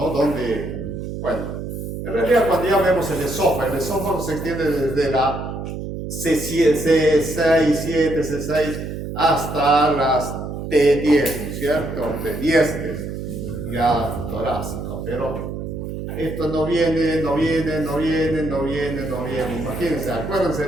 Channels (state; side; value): noise; right; hum, 6 dB below the sound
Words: Donde, bueno, en realidad cuando ya vemos el esófago se extiende desde la C6, C7, C6 hasta las T10, ¿no es cierto? T10 es ya torácico, pero esto no viene. Imagínense,